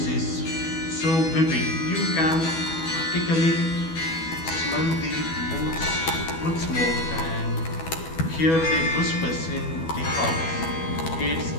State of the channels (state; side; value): late; right; 12 ms